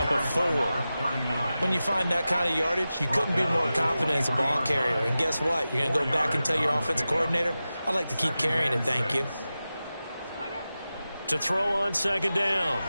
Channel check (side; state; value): both; inverted; correlation -0.94